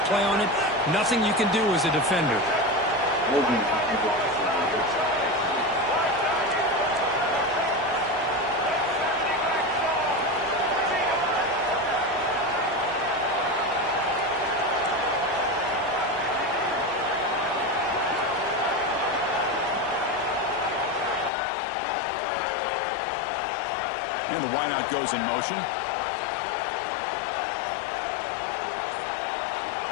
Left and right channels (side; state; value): right; drops out; at 21.3 s